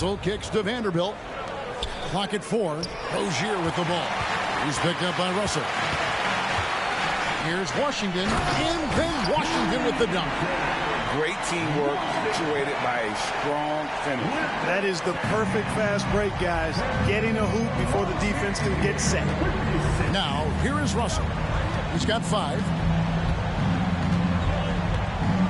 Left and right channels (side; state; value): both; identical; correlation 1.00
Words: kicks to Vanderbilt. Clock at 4. Rozier with the ball. He's picked up by Russell. Here's Washington. And then Washington with the dunk. Great teamwork, punctuated by a strong finish. That is the perfect fast break, guys. Getting a hoop before the defense can get set. Now, here is Russell. He's got 5.